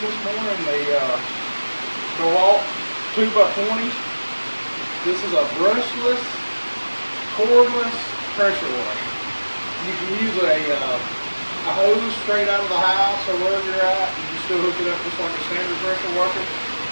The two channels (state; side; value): inverted; both; correlation -1.00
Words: this morning the DeWalt 2x20. This is a brushless, cordless pressure washer. You can use a hose straight out of the house or wherever you're at. You can still hook it up just like a standard pressure washer.